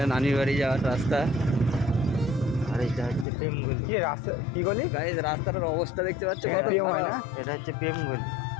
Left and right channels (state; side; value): drops out; right; at 3.2 s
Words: নানির বাড়ি যাওয়ার রাস্তা। আর এটা হচ্ছে প্রেমগলি। কি রাস্তা কি গলি গাইস রাস্তাটার অবস্থা দেখতে পাচ্ছ কত প্রেম হয় না? এটা হচ্ছে প্রেমগলি।